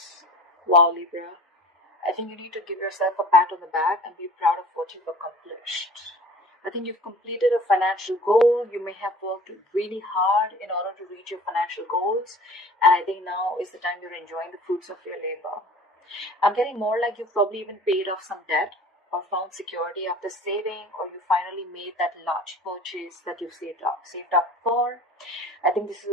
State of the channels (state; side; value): normal; both; correlation 0.44